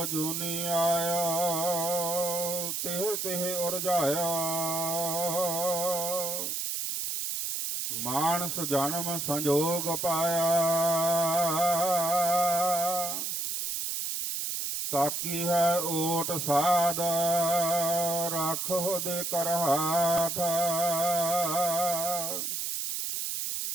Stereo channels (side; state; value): right; noise; hiss, 2 dB below the sound